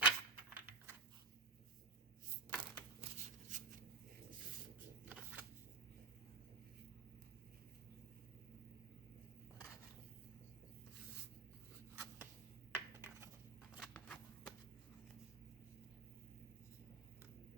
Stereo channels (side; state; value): left; quieter; 4.0 dB